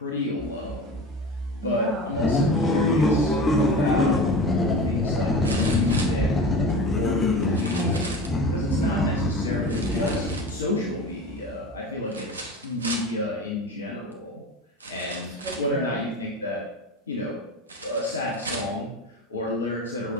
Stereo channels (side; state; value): both; normal; correlation 0.32